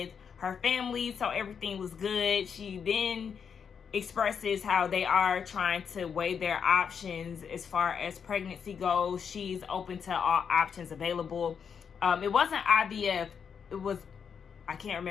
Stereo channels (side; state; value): right; quieter; 6.9 dB